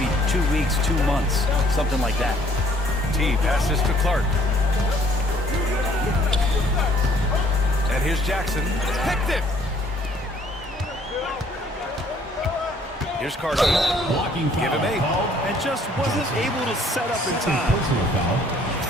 2 weeks, 2 months, something like that. T passes to Clark. And here's Jackson. Picked it! Here's Carson. Blocking foul. Give him 8. And just wasn't able to set up in time. Personal foul.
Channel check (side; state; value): both; normal; correlation 0.61